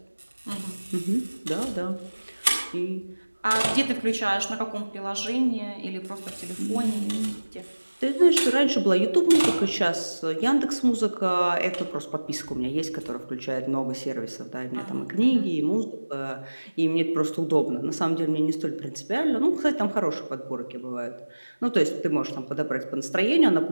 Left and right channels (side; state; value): both; inverted; correlation -1.00